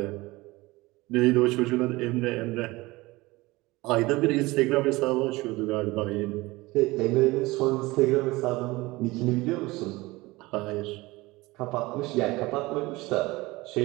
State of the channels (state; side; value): quieter; left; 21.0 dB